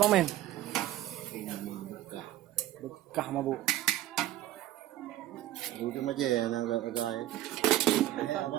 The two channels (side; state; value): left; quieter; 14.2 dB